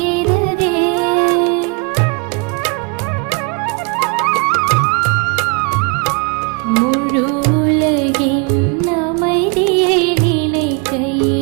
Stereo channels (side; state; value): left; quieter; 33.0 dB